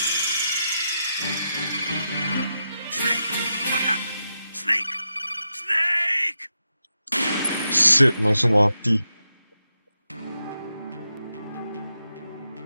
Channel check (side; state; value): both; inverted; correlation -0.86